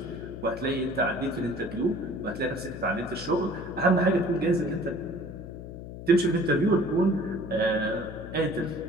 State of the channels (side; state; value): left; noise; hum, 11 dB below the sound